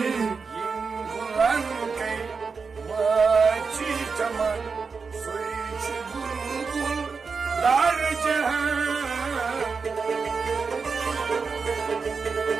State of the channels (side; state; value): left; quieter; 5.1 dB